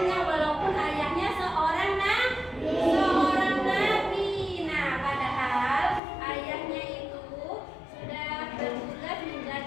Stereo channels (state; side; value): drops out; right; at 6.0 s